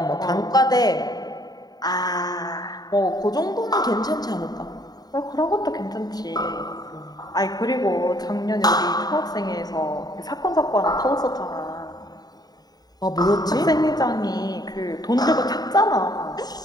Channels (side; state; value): right; late; 0.19 ms